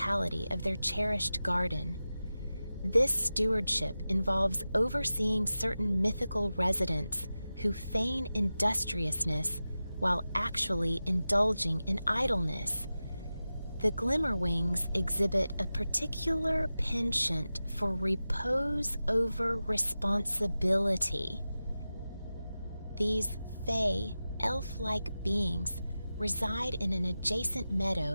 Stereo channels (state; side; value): inverted; both; correlation -0.94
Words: of their cherished garden. This stewardship involves overseeing certain mythical residents who feign industriousness while actually indulging in idleness. The Glimmerwings exhibit a particular penchant for repose over responsibility. These fey, elf-like beings reside in an adjacent